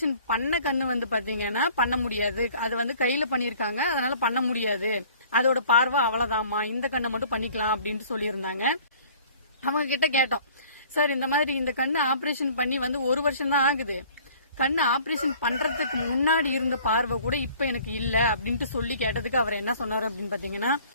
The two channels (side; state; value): both; inverted; correlation -0.52